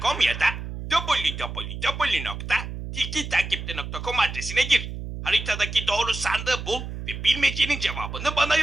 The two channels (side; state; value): right; noise; hum, 8 dB below the sound